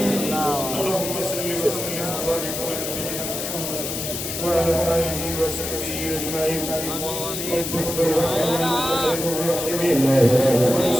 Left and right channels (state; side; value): noise; left; hiss, 5 dB below the sound